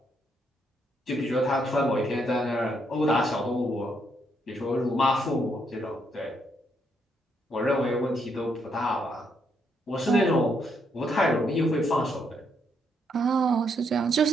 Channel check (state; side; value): normal; both; correlation 0.75